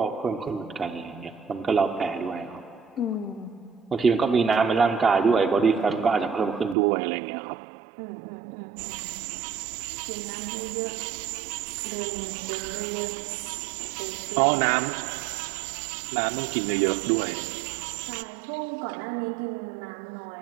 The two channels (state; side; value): drops out; left; at 6.8 s